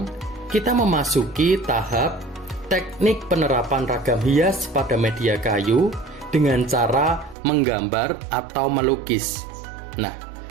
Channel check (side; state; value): left; drops out; at 7.4 s